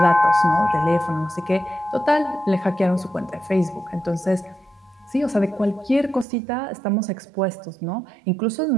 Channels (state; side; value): drops out; left; at 6.2 s